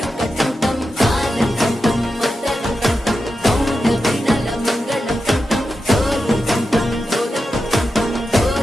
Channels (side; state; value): both; normal; correlation 0.90